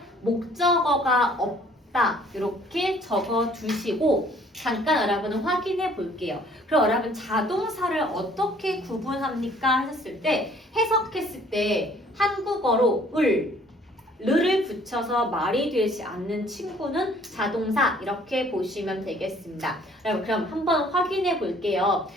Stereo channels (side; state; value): both; normal; correlation 0.58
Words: 목적어가 없다. 이렇게 적어두시고 잠깐 여러분은 확인해 볼게요. 그럼 여러분 자동사를 어떻게 구분합니까? 하셨을 때 해석했을 때 한국어로 를 붙여서 말이 되지 않는 친구는 자동사 이렇게 보시면 되겠습니다. 그럼 한번 확인해 볼게요.